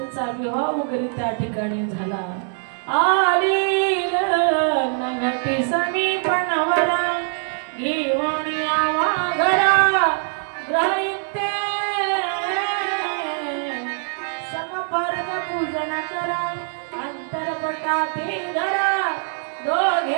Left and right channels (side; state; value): left; silent; 59 dB below the other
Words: विवाह वगैरे त्या ठिकाणी झाला. आली घटी समीपनावरा घेऊन यावा घरा ग्रहयुक्ते समपर्क पूजन करा अंतरपटाते धरा